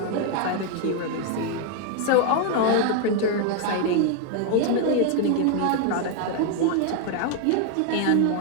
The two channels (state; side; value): different; both; correlation 0.00